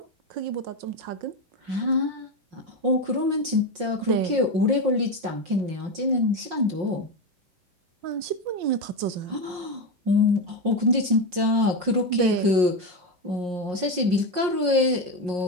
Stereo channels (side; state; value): left; late; 5.6 ms